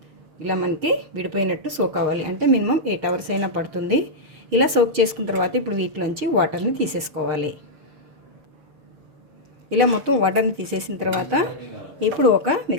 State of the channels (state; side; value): late; left; 6.5 ms